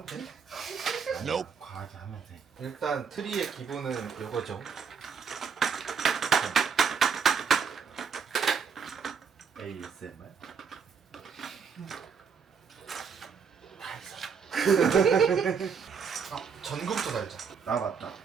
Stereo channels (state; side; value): quieter; left; 6.1 dB